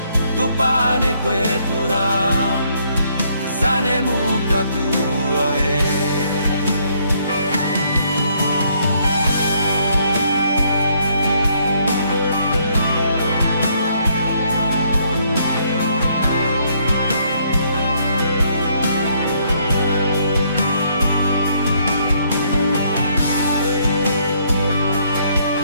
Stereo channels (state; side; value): inverted; both; correlation -0.69